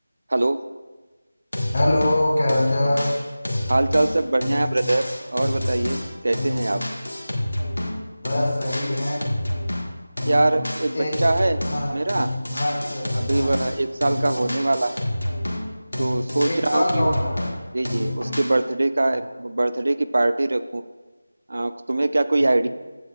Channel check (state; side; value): inverted; both; correlation -0.97